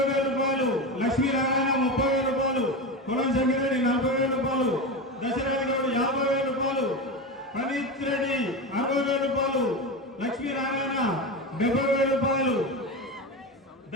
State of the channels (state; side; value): normal; both; correlation 0.21